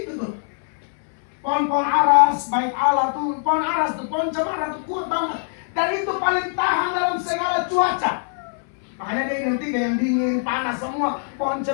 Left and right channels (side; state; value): right; silent; 64 dB below the other